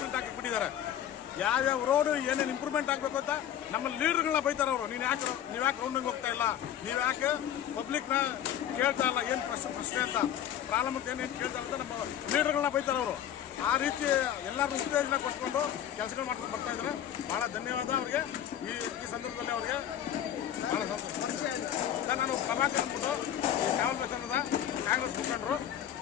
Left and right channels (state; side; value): quieter; right; 10.4 dB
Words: ಪ್ರಿಂಟ್ ಹಾಕಿಬಿಟ್ಟಿದ್ದಾರೆ. ಯಾವ್ಯಾವ ರೋಡು ಏನೇನು ಇಂಪ್ರೂವ್ಮೆಂಟ್ ಆಗಬೇಕು ಅಂತ ನಮ್ಮ ಲೀಡರ್ಗಳನ್ನ ಬೈತಾರೆ ಅವರು. ನೀವು ಯಾಕೆ ರೌಂಡಿಂಗ್ ಹೋಗ್ತಾ ಇಲ್ಲ, ನೀವು ಯಾಕೆ ಪಬ್ಲಿಕ್ನ ಕೇಳ್ತಾ ಇಲ್ಲ, ಏನು ಪ್ರಶ್ನೆ ಅಂತ ಪ್ರಾಬ್ಲಮ್ ಅಂತ ಏನೇನು ಕೇಳ್ತಾ ಇಲ್ಲ ಅಂತ ನಮ್ಮ ಲೀಡರ್ಗಳನ್ನ ಬೈತಾರೆ ಅವರು. ಆ ರೀತಿ ಎಲ್ಲರೂ ಉತ್ತೇಜನ ಕೊಟ್ಕೊಂಡು ಕೆಲಸಗಳು ಮಾಡ್ಕೊಂಡು ಬರ್ತಾ ಇದ್ದಾರೆ. ಭಾಳ ಧನ್ಯವಾದ ಅವರಿಗೆ. ಈ ಸಂದರ್ಭದಲ್ಲಿ ಅವರಿಗೆ ಭಾಳ ಸಂತೋಷ. ಸರ್, ನಾನು ಪ್ರಭಾಕರ್ ಅಂದ್ಬಿಟ್ಟು ಕಾವಲ್ ಬಸವನದ ಕಾಂಗ್ರೆಸ್ ಮುಖಂಡರು.